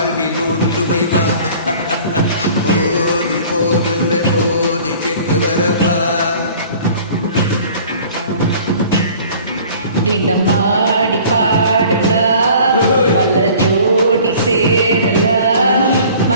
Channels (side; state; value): both; inverted; correlation -0.48